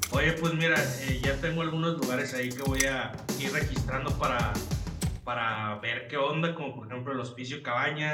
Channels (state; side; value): identical; both; correlation 1.00